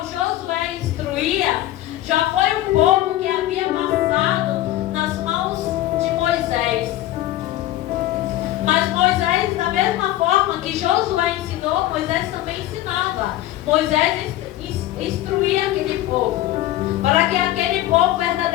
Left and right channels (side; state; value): right; quieter; 14.7 dB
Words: Josué instruía, já foi um povo que havia passado nas mãos de Moisés. Mas Moisés, da mesma forma que Josué ensinou, Moisés também ensinava. Moisés instruía aquele povo, para que aquele povo